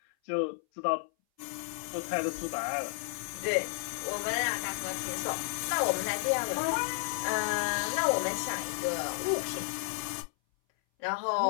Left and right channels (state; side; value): silent; right; 56 dB below the other